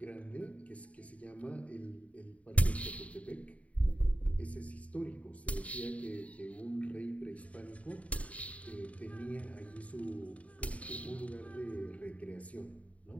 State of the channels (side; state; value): right; late; 0.067 ms